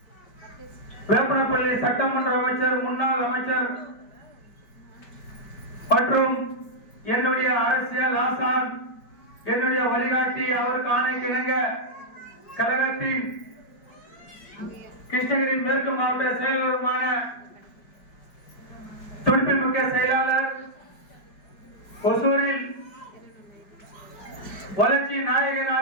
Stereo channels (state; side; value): late; right; 5.0 ms